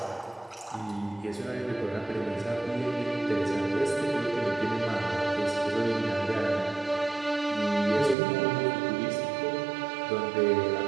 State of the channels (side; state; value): left; drops out; at 8.2 s